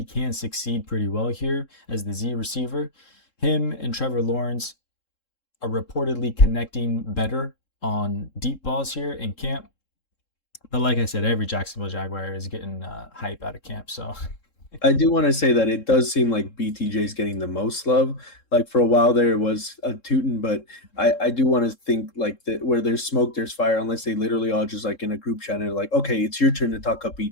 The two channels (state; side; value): late; right; 3.7 ms